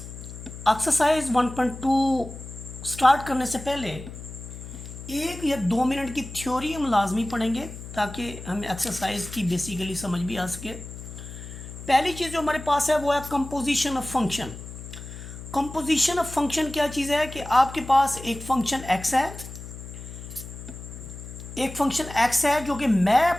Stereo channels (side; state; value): left; noise; hum, 12 dB below the sound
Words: Exercise 1.2 start करने से पहले 1 या 2 मिनट की थ्योरी हम लाजमी पढ़ेंगे ताकि हमें एक्सरसाइज की बेसिकली समझ भी आ सके। पहली चीज़ जो हमारे पास है वो है composition of function. Composition of function क्या चीज़ है कि आपके पास एक फंक्शन एक्स है, जो कि